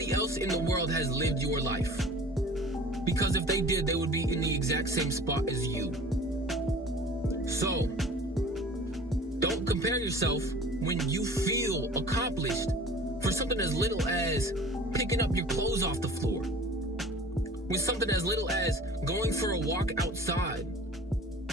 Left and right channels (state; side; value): normal; both; correlation 0.44